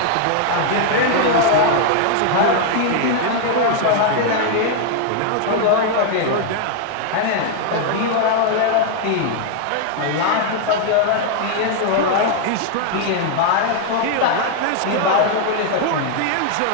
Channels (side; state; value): both; different; correlation 0.00